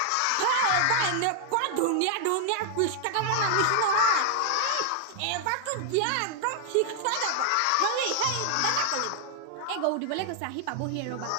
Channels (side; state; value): both; different; correlation 0.00